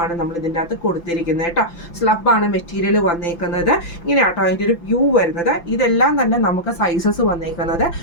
നമ്മൾ ഇതിൻ്റെ അകത്ത് കൊടുത്തിരിക്കുന്നത് കേട്ടോ. സ്ലബാണ് മെറ്റീരിയൽ വന്നേക്കുന്നത്. ഇങ്ങനെയാട്ടോ അതിൻ്റെ ഒരു വ്യൂ വരുന്നത്. ഇതെല്ലാം തന്നെ നമുക്ക് സൈസസ് വന്നേക്കുന്നത്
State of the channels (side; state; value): right; late; 5.9 ms